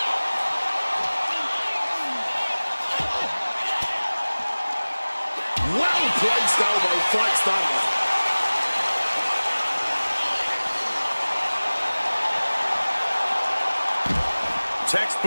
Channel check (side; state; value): both; inverted; correlation -1.00